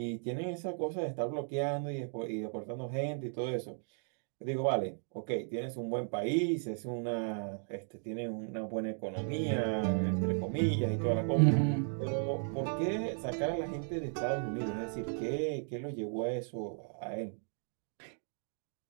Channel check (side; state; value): left; silent; 54 dB below the other